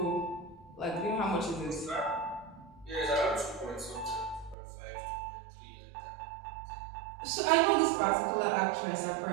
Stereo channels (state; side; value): drops out; left; at 4.5 s